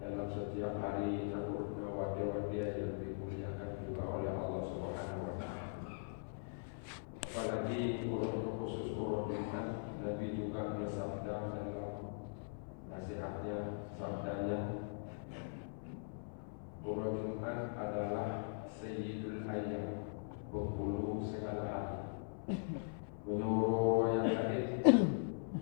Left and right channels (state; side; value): silent; right; 50 dB below the other